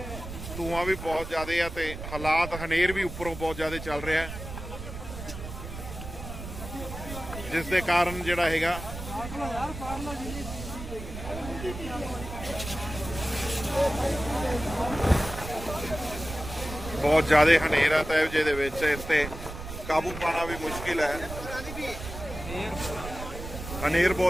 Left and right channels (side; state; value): right; noise; rumble, 10 dB below the sound